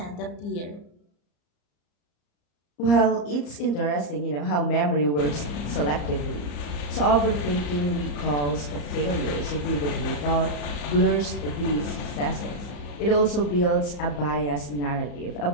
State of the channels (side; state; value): right; late; 34 ms